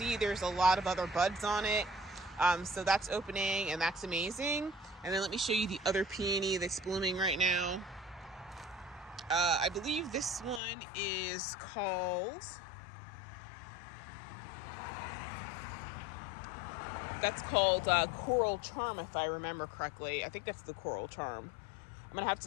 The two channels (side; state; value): right; drops out; at 10.6 s